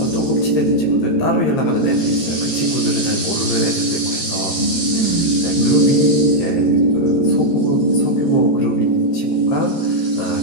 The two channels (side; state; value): right; late; 13 ms